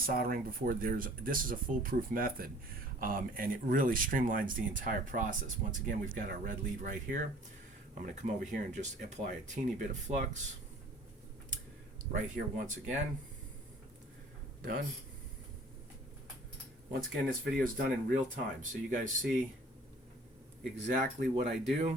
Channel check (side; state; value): both; normal; correlation 0.51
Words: before, this is a foolproof method, and it really streamlines the entire process. Once again, we've got our red lead right here. I'm going to come over here and just apply a teeny bit of flux right here once again. Done. Once again, this video is done in real time, so you guys see exactly what I